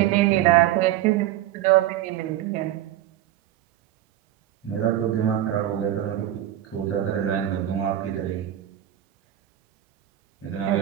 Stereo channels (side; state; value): left; quieter; 12.8 dB